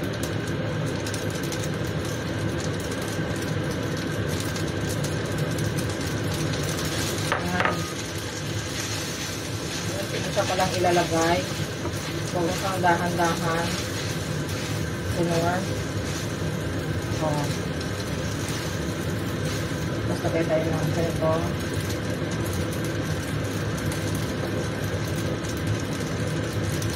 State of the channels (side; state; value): both; identical; correlation 1.00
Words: Ayan. Hindi siya palang ilalagay. Huwag mo kang dahan-dahan. Kunor. Oh. Lagay tayo ng ganito.